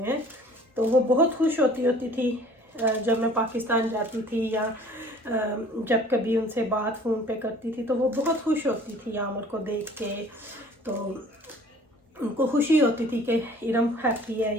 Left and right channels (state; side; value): normal; both; correlation 0.51